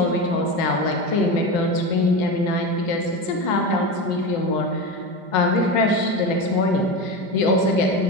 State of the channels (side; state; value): left; late; 5.0 ms